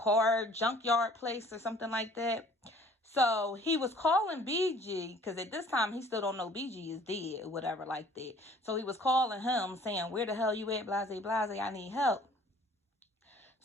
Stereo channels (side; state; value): both; normal; correlation 0.54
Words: junkyard place or something like that. So he was calling BG, because at this time he still don't know BG is dead or whatever like that. So he was calling him saying, "Where the hell you at, blase, I need help."